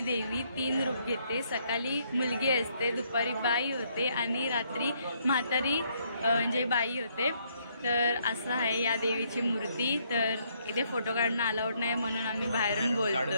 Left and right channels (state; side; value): inverted; both; correlation -0.71